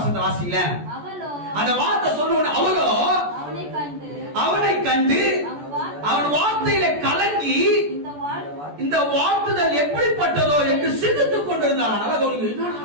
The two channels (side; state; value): left; late; 14 ms